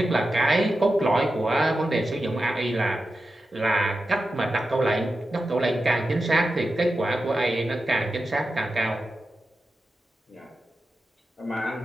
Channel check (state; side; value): normal; both; correlation 0.91